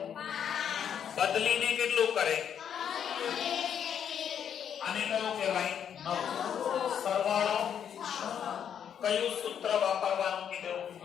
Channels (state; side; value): quieter; right; 8.6 dB